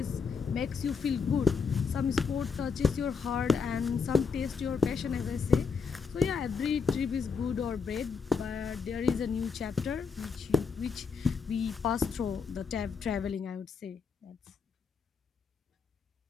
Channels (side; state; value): right; quieter; 5.4 dB